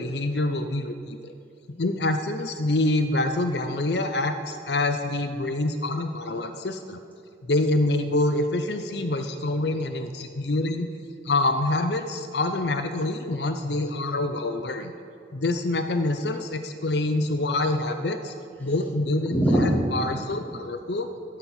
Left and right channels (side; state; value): both; normal; correlation 0.40